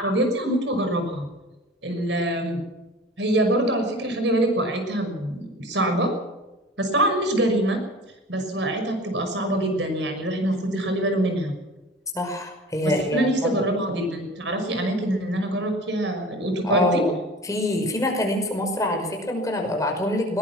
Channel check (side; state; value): both; normal; correlation 0.41